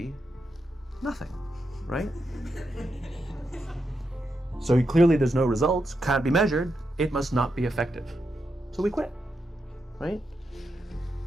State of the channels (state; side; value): normal; both; correlation 0.85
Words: nothing, right? So clearly there's no results, can't be measured, it must not be effective. So we quit, right?